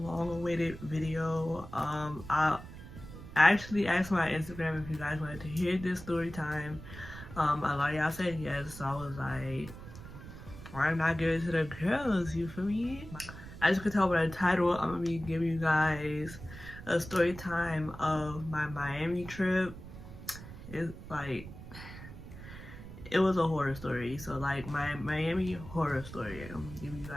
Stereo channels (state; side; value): noise; right; rumble, 13 dB below the sound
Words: video. I actually asked my Instagram if you guys wanted to hear this story time. A lot of y'all said yes, so I was like, why not give it to the girls, you feel me? As you can tell by the title, I'm gonna be giving you guys a story time of my Miami trip. It's like, it was a horror story, so like my Miami horror story. I'm gonna give you